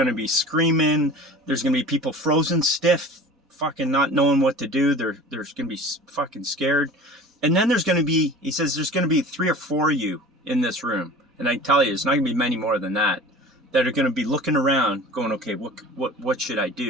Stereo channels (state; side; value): normal; both; correlation 0.40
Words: to be screaming. There's going to be people frozen stiff, fucking not knowing what to do. There's going to be fucking scared. And then there's going to be, he says, there's going to be 3 or 4 of you in this room. And I tell you, it's not going to be many more than that are going to be looking around going, okay, what should I